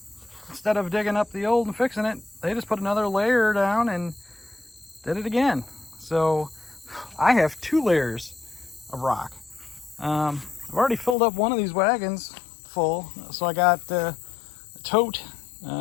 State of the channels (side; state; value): right; drops out; at 11.2 s